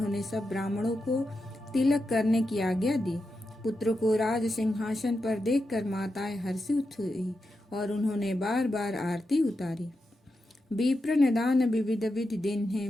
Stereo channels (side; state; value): both; normal; correlation 0.88